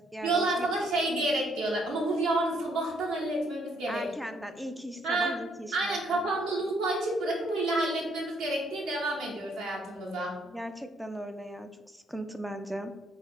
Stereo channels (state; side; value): normal; both; correlation 0.69